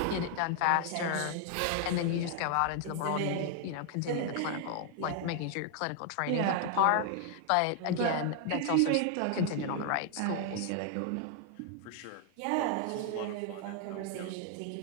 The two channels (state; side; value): different; both; correlation 0.00